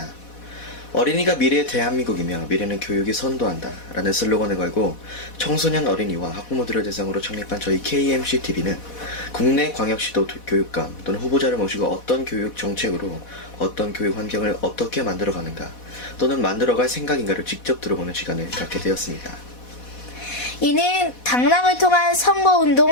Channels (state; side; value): late; right; 4.1 ms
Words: 어린이가 미래의 대한민국이며 미래는 교육이 선도한다 라는 슬로건을 걸고 청소년 어린이와 학부모들을 대상으로 창립한 저희 KMCTV는 국내 광역시도 교육감 또는 후보자를 모시고 어떤 교육 정책으로 어떤 교육 환경을 어떻게 만들어가는가 또는 만들어갈 생각인가를 직접 들어보는 시간을 갖게 되었습니다. 이는 당락을 통한